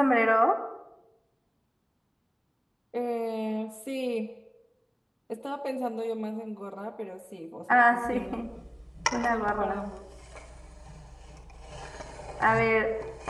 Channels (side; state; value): both; identical; correlation 1.00